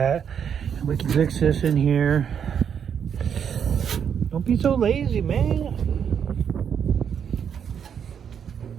We can fix this in here. Don't be so lazy, man.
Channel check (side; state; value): left; quieter; 7.8 dB